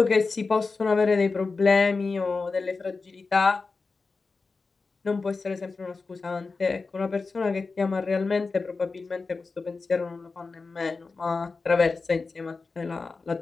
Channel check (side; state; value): right; quieter; 4.1 dB